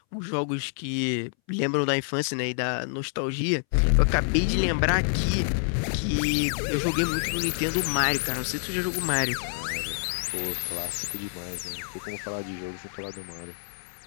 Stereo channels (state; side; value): silent; right; 60 dB below the other